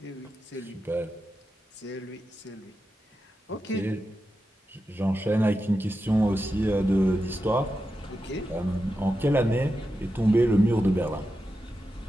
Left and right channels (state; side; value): normal; both; correlation 0.90